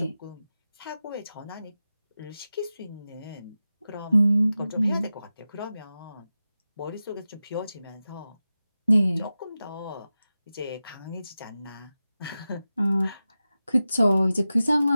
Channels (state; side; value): inverted; both; correlation -0.94